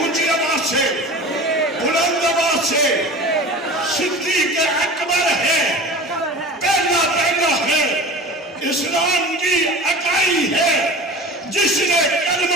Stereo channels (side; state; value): both; normal; correlation 0.37